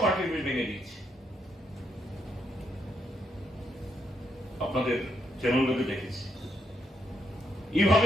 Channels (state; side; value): normal; both; correlation 0.78